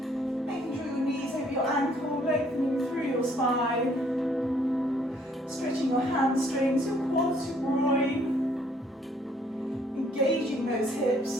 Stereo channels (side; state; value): both; normal; correlation 0.64